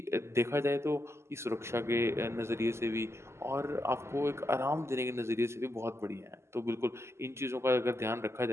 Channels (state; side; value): late; left; 0.13 ms